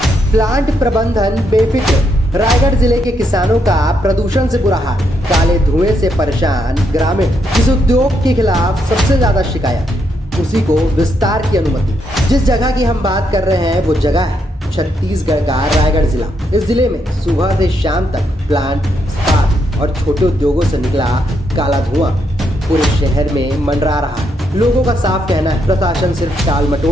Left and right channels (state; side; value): normal; both; correlation 0.78